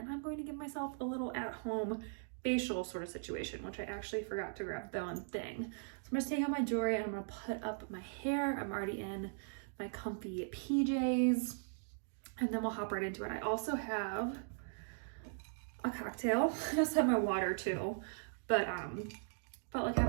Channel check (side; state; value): left; silent; digital silence